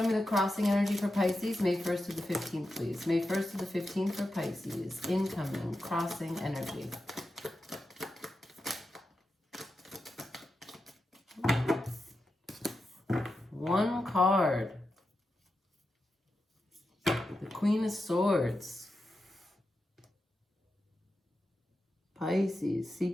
me the crossing energy for Pisces, May 1st to the 15th, please. May 1st to the 15th for Pisces. Incoming, crossing energy. One card. The Queen of Swords. Pisces,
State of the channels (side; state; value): both; normal; correlation 0.89